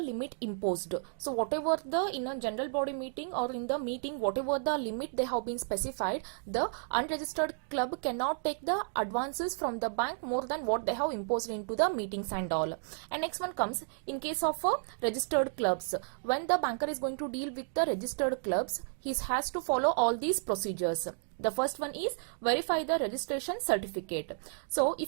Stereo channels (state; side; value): silent; left; digital silence